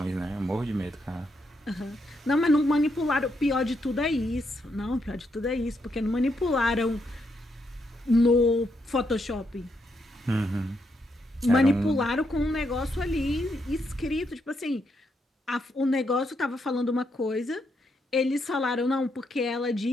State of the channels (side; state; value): both; normal; correlation 0.79